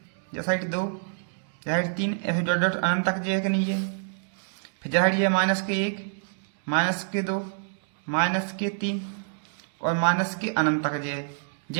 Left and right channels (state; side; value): silent; left; digital silence